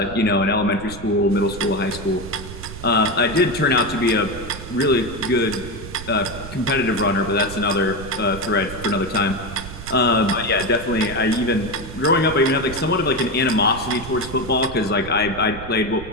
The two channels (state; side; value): noise; right; rumble, 12 dB below the sound